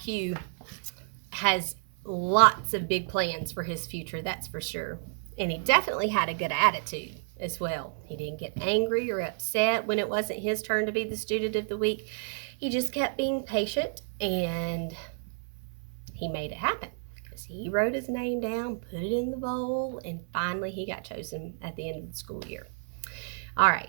has lots of big plans for his future, that's for sure. And he definitely had a good attitude as well. He didn't get angry or upset when it wasn't his turn to be the Student of the Week. He just kept being patient, and he made it happen because he wrote his name down, put it in the bowl, and finally he got chosen at the end of the school year. All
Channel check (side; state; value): left; silent; 58 dB below the other